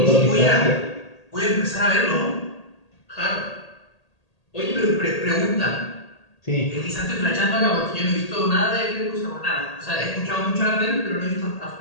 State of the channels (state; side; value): late; right; 1.8 ms